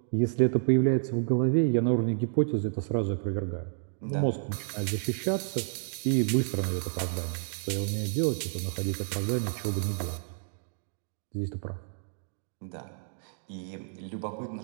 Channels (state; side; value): silent; left; digital silence